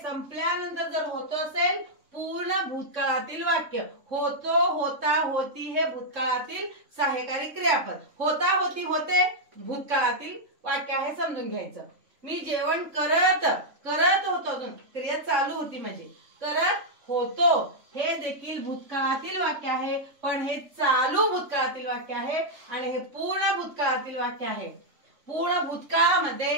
जर होतो असेल पूर्ण भूतकाळातील वाक्य. होतो, होता, होती हे भूतकाळातील सहाय्यकारी क्रियापद. होता, होती, होते भूतकाळातील वाक्य आहे, समजून घ्यायचं. मी जेवण करत होतो, क्रिया चालू होती म्हणजे करत होतो हे देखील भूतकाळातील वाक्य आहे, पण हे चालू भूतकाळातील वाक्य आहे आणि हे पूर्ण भूतकाळातील वाक्य आहे. पूर्ण भूतकाळामध्ये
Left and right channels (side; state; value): left; late; 3.4 ms